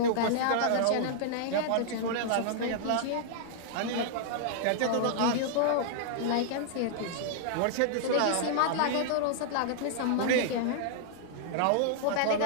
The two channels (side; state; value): both; different; correlation -0.01